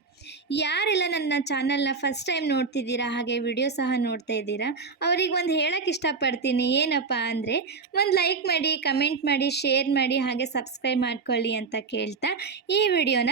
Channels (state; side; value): quieter; left; 4.8 dB